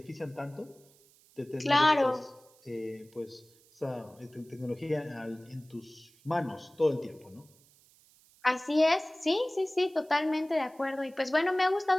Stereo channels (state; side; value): noise; right; hiss, 29 dB below the sound